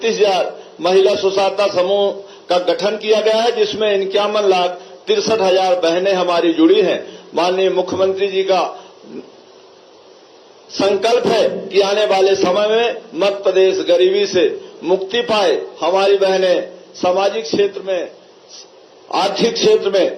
महिला स्वसहायता समूह का गठन किया गया है, जिसमें 51,63,000 बहनें हमारी जुड़ी हैं। माननीय मुख्यमंत्री जी का संकल्प है कि आने वाले समय में मध्य प्रदेश गरीबी से मुक्ति पाए, हमारी बहनें सामाजिक क्षेत्र में, आर्थिक क्षेत्र में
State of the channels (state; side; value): identical; both; correlation 1.00